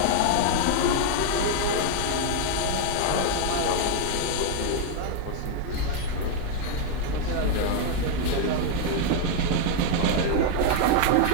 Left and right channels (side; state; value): both; different; correlation 0.00